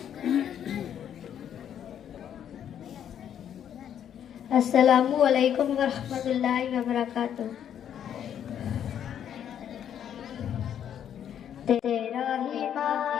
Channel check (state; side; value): quieter; right; 9.5 dB